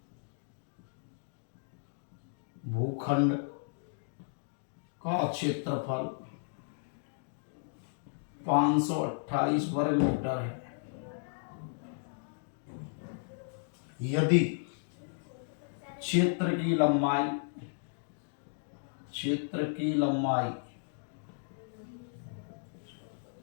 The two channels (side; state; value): right; silent; digital silence